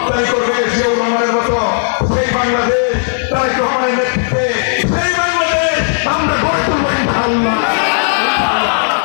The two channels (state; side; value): silent; right; digital silence